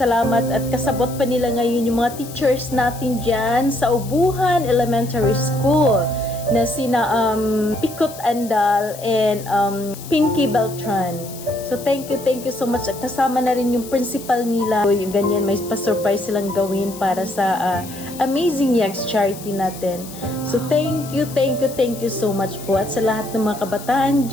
at kasabot pa nila ngayon yung mga teachers natin dyan sa Ubuhan Elementary School na sina Pikot Andal and Pinky Beltran. So thank you so much. At kasama na rin yung principal nila. So, yung ganyan, may pa-surprise silang gawin para sa Amazing Eggs charity natin. So thank you so much po. At sa lahat ng mga kabataan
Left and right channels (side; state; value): left; noise; hiss, 15 dB below the sound